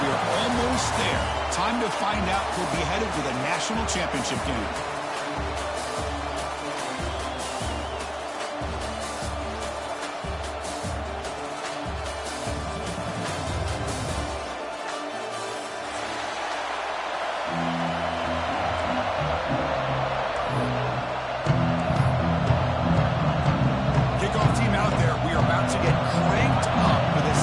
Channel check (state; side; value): identical; both; correlation 1.00